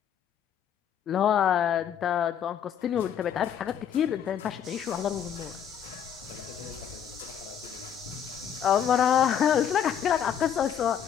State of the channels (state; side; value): quieter; right; 8.8 dB